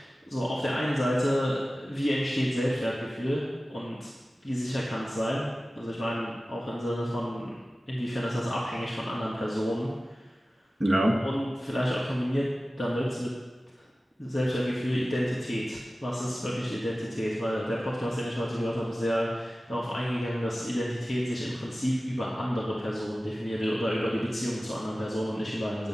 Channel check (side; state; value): both; normal; correlation 0.96